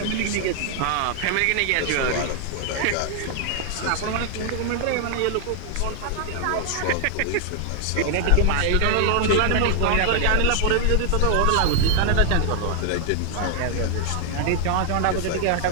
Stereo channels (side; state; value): both; different; correlation 0.00